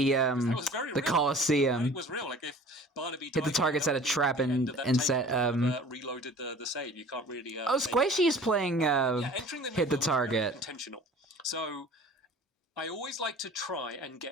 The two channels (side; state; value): both; normal; correlation 0.45